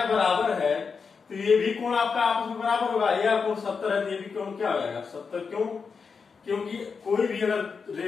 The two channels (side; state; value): right; quieter; 5.4 dB